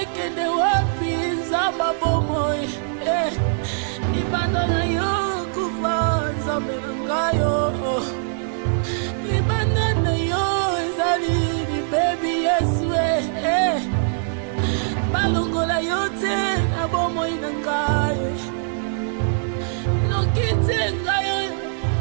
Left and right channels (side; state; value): left; silent; digital silence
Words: wapi nzamba bomoi libanda na yo kufa nzambe na ngayo libanda na yo ezali libebi yesu balongola yo te na bomoi na ngayo noki te ngayo